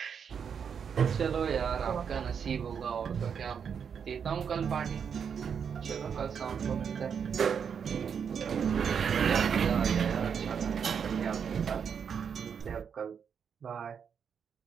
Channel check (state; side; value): quieter; left; 7.1 dB